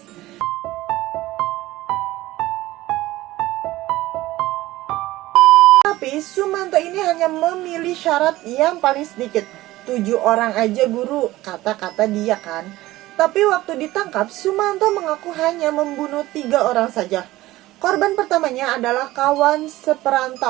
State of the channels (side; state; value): left; quieter; 17.2 dB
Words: Tapi Sumanto ini hanya memilih syarat yang paling sedikit. 7 orang aja guru, kata-kata dia kan. Tapi waktu ditangkap, Sumanto mengaku hanya membunuh 3 orang saja. Korban pertamanya adalah kawan